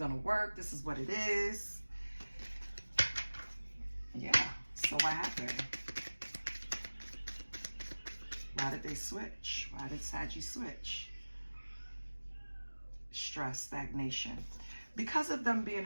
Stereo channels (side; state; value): both; inverted; correlation -1.00